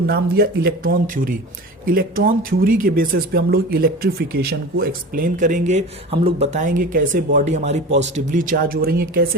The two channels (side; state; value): both; normal; correlation 0.33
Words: नाम दिया इलेक्ट्रॉन थ्योरी। इलेक्ट्रॉन थ्योरी के बेसिस पे हम लोग इलेक्ट्रिफिकेशन को एक्सप्लेन करेंगे। हम लोग बताएंगे कैसे बॉडी हमारी पॉजिटिवली चार्ज हो रही है,